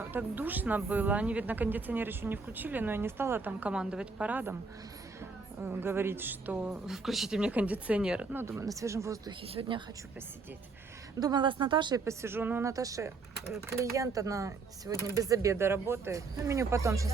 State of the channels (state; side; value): quieter; left; 4.3 dB